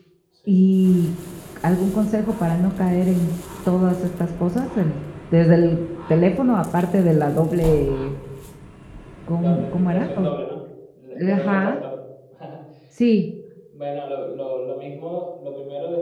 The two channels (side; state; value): both; identical; correlation 1.00